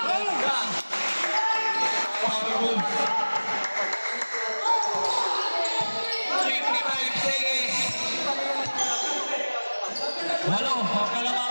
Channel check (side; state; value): both; inverted; correlation -1.00